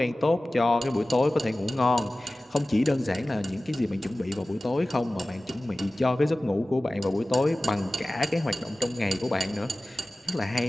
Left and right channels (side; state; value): both; normal; correlation 0.97